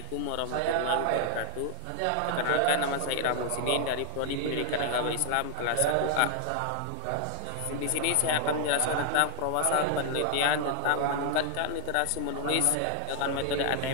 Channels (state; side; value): different; both; correlation 0.00